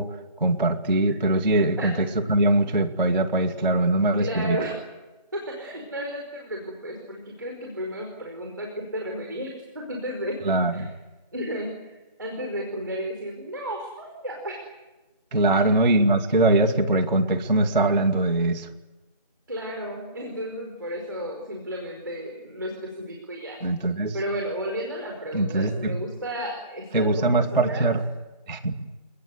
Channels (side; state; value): both; inverted; correlation -0.42